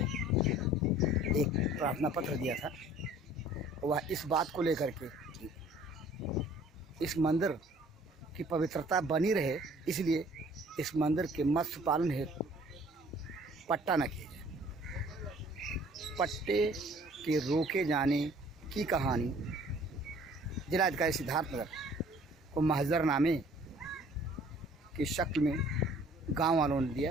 एक प्रार्थना पत्र दिया था। वह इस बात को लेकर के इस मंदिर की पवित्रता बनी रहे, इसलिए इस मंदिर के मत्स्य पालन हेतु पट्टा न किया जाए। पट्टे के रोके जाने की कहानी जिलाधिकारी सिद्धार्थनगर को महजरनामे की शक्ल में गांव वालों ने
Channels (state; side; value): normal; both; correlation 0.54